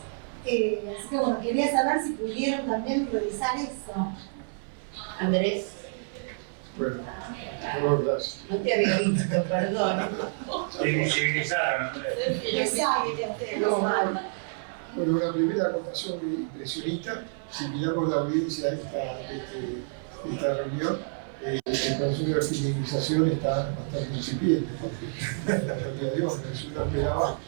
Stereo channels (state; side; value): silent; left; 59 dB below the other